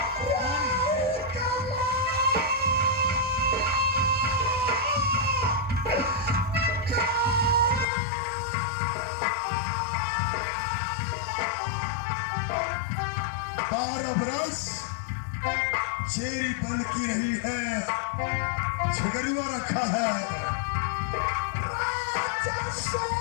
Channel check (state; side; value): drops out; right; at 7.9 s